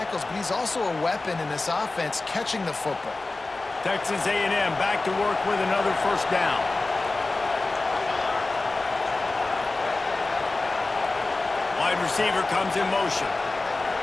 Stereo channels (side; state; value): right; quieter; 3.3 dB